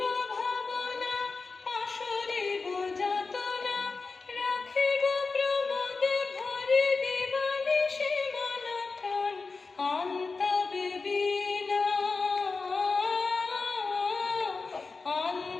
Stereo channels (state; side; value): quieter; right; 4.2 dB